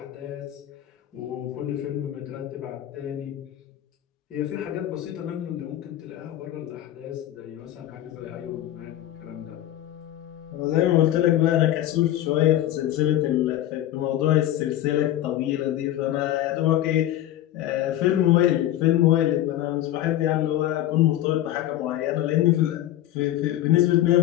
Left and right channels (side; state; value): right; quieter; 13.2 dB